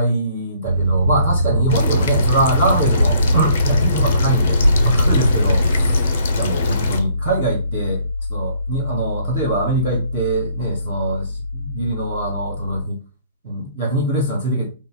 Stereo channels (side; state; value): both; inverted; correlation -0.63